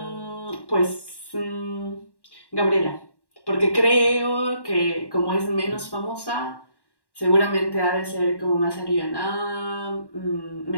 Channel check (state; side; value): late; right; 1.1 ms